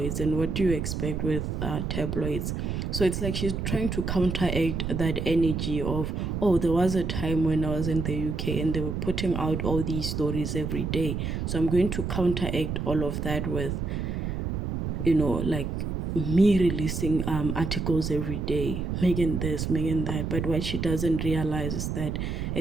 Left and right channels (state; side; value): noise; right; rumble, 2 dB below the sound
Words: and what do you expect with tabloids? So it's like she's trying to counteract that energy of, oh, there was a time when I was in the UK and they were putting out all these stories every day, so I'm going to counteract all of that with, like, me releasing articles every day, Meghan this, Meghan that. But what she doesn't realize is that